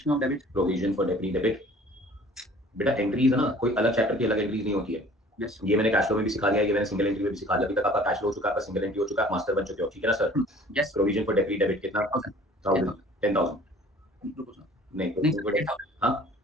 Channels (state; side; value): normal; both; correlation 0.50